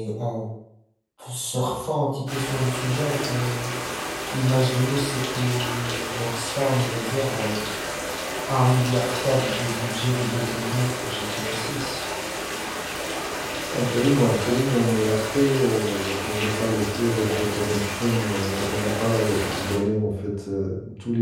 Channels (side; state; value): both; identical; correlation 1.00